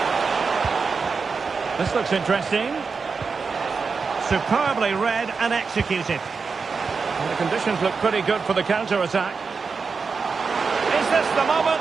This looks interesting. Superbly read and executed. And the conditions look pretty good for the counter-attack. Is this the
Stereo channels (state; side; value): quieter; left; 5.0 dB